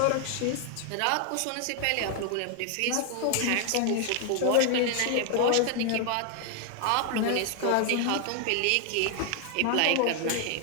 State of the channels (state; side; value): different; both; correlation 0.00